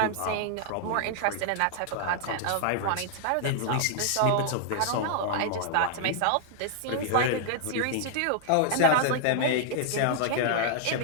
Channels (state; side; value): different; both; correlation 0.00